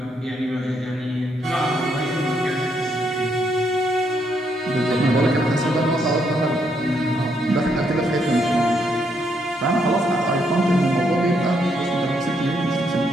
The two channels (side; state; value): both; normal; correlation 0.75